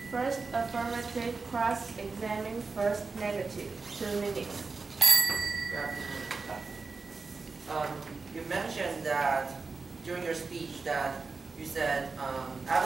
First affirmative, cross-examine, first negative. 2 minutes. You mentioned that during your speech that you said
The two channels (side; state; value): left; quieter; 4.2 dB